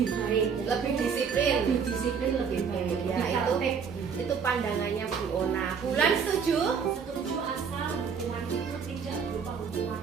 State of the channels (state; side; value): quieter; left; 6.4 dB